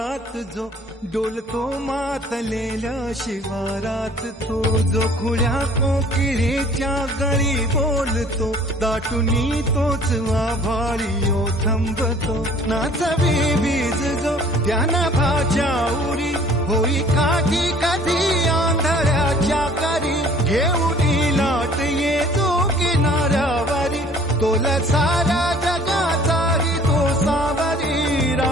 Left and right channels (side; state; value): both; normal; correlation 0.53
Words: जो डोलतो मातलेल्या शिवारात तो जो खुल्या कोकिळेच्या गळी बोलतो दाटुनी तोच आभाळी थांबतो नाचवी बीज जो त्यानं भाच्या उरी होई काठी कधी आंधळ्याच्या करी घेऊन लाट येतो किनाऱ्यावरी तोला सारा जगाचाही तो सावरी